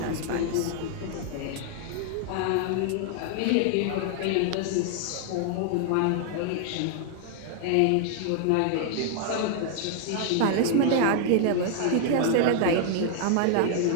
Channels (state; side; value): different; both; correlation 0.00